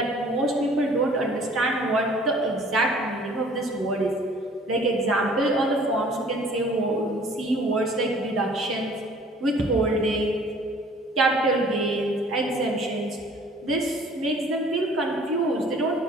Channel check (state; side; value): normal; both; correlation 0.53